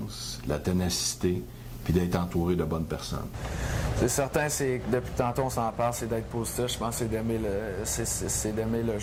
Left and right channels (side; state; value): both; identical; correlation 1.00